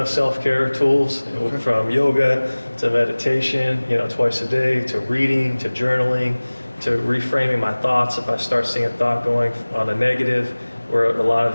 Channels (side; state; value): both; inverted; correlation -1.00